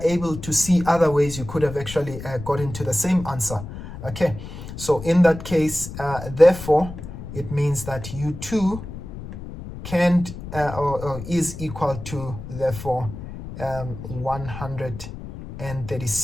able to see other ways you could have actually got into the same answer, okay? So in that case, therefore, it means that U2 can't or is equal to, therefore,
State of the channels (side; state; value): left; noise; rumble, 11 dB below the sound